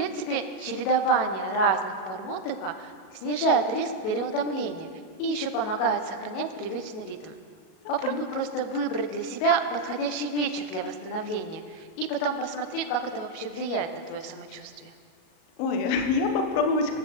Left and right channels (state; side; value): late; right; 37 ms